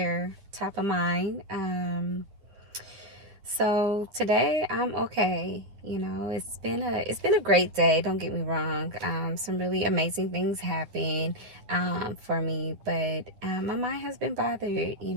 top of mind. So today I'm okay. It's been a great day. Don't get me wrong. Some really amazing things happen for me, but my mind has been bothered.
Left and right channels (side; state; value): left; late; 9.9 ms